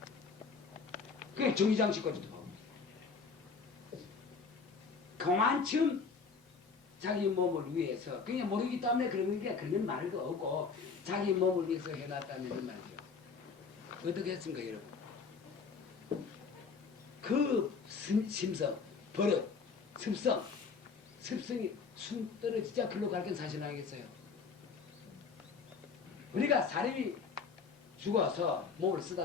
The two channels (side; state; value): right; quieter; 5.2 dB